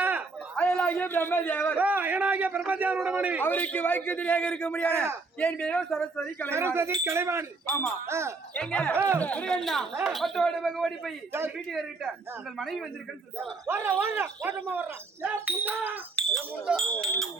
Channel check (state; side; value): quieter; left; 3.8 dB